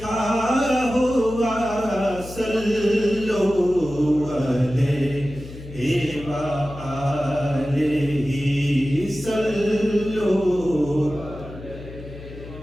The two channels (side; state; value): left; noise; hum, 14 dB below the sound